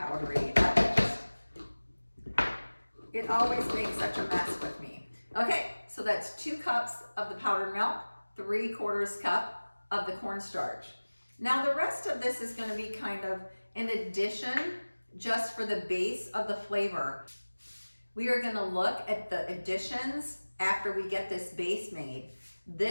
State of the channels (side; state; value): both; inverted; correlation -1.00